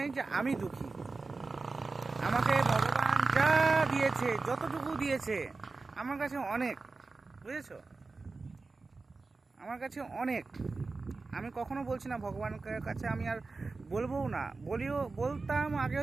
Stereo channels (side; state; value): left; quieter; 3.9 dB